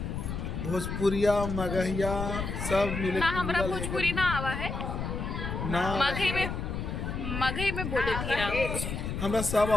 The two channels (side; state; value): left; noise; rumble, 4 dB below the sound